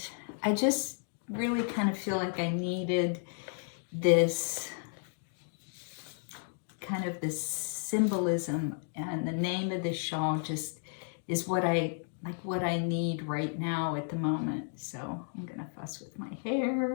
I just really kind of feel like I needed this kind of this symbolism, and the name of the shawl just is what I like what I need right now at the moment. So I'm gonna fuss with my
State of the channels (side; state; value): right; silent; 56 dB below the other